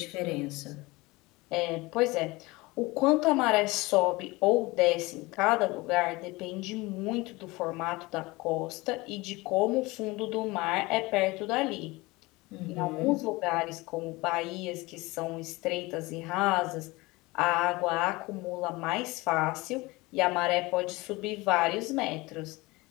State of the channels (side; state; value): right; quieter; 22.4 dB